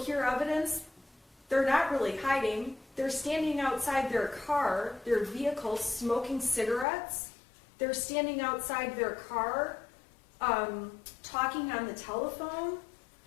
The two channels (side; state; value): right; drops out; at 6.9 s